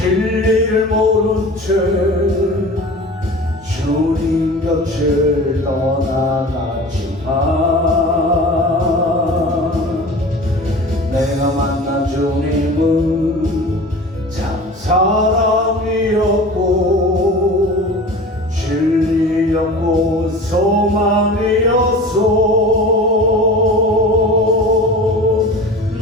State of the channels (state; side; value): normal; both; correlation 0.37